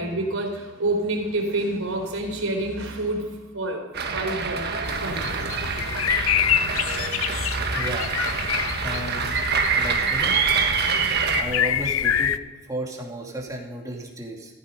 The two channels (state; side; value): normal; both; correlation 0.05